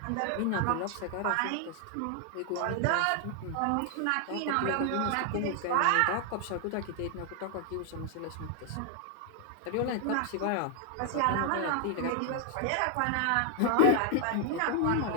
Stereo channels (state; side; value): different; both; correlation 0.00